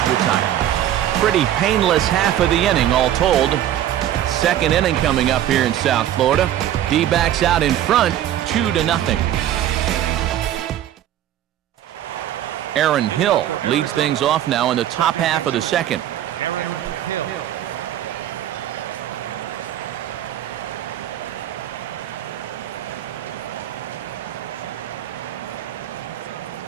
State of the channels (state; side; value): quieter; left; 11.7 dB